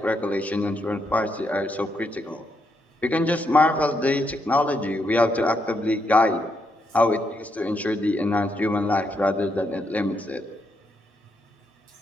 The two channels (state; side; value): normal; both; correlation 0.79